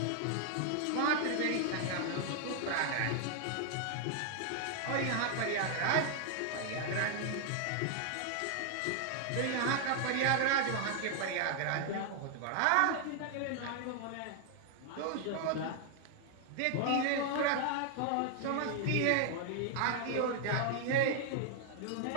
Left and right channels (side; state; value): both; different; correlation 0.00